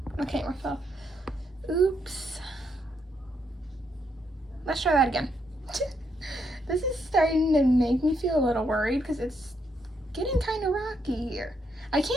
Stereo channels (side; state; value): both; normal; correlation 0.77